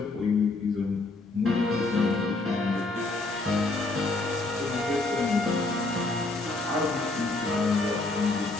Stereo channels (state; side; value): quieter; right; 3.2 dB